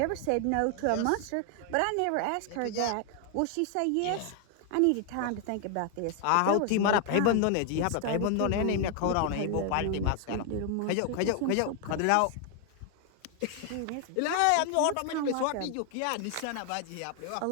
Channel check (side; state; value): both; different; correlation 0.00